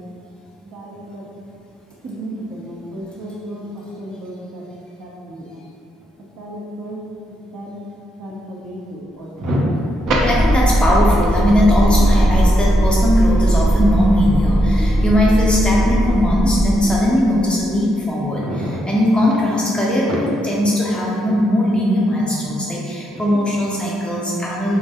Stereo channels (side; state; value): both; normal; correlation 0.81